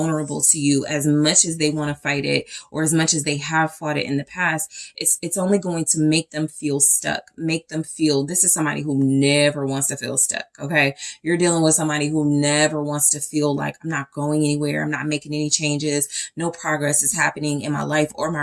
to you as much as they want to fight it, or as much as they have fought it in the past. It's only going to make them feel stuck, make them feel, this is somebody who never wants to feel stuck, okay? You're dealing with somebody who never wants to feel like, I'm not going anywhere, I'm not making any changes, no progress is happening in my life or my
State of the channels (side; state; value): both; identical; correlation 1.00